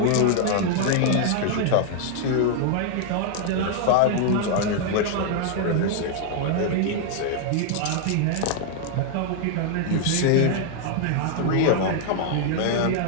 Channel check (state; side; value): different; both; correlation 0.00